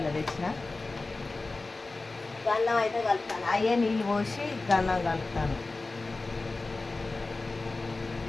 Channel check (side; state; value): right; quieter; 3.4 dB